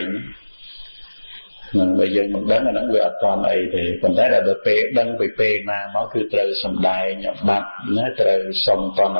នឹងបើយើងមិនដឹងអាហ្នឹងវាអត់តន់អីទេប៉ុន្តែដល់ពេលដឹងពីពេលណាមកគឺត្រូវសម្ដែងអបាត់ណាត្រូវសុំតន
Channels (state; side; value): inverted; both; correlation -1.00